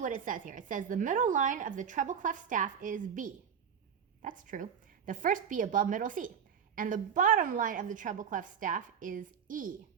what it says here. It says the middle line of the treble clef staff is B. That's true. The first B above middle C. And the bottom line of the treble clef staff is E.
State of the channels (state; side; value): quieter; left; 7.5 dB